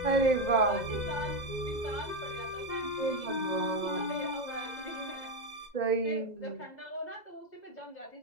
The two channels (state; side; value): late; right; 2.0 ms